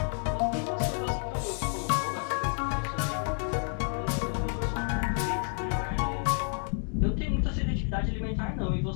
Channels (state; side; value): silent; right; 58 dB below the other